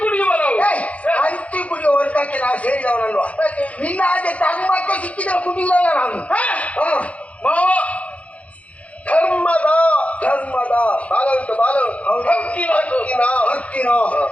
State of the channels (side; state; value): right; late; 0.065 ms